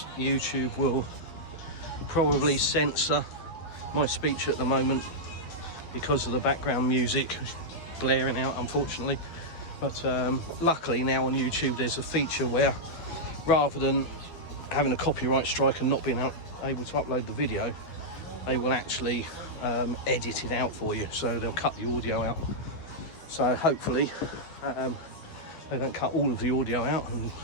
YouTube will probably censor my speech at the moment because of the background music blaring out, unfortunately. But luckily now on YouTube there's a feature where, rather than having a copyright strike and not being able to upload the video, they will actually edit it out for you, so they'll cut the audio out. So hopefully they don't cut all of the audio out and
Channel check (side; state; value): right; late; 12 ms